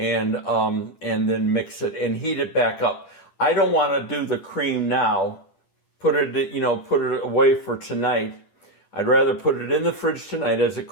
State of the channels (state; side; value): late; right; 10 ms